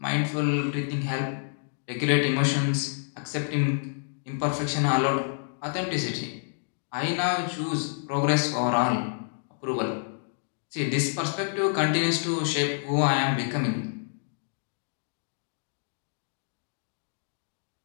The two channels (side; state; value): right; silent; digital silence